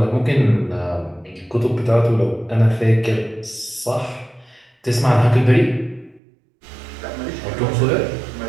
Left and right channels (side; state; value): left; drops out; at 6.2 s